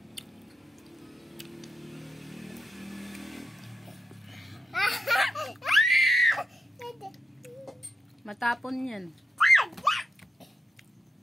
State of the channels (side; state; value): both; normal; correlation 0.88